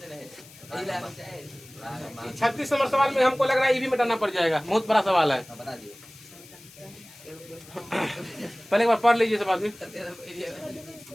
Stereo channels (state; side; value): noise; left; hiss, 21 dB below the sound